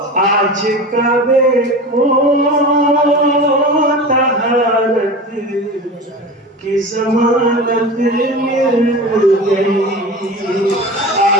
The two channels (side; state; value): both; normal; correlation 0.31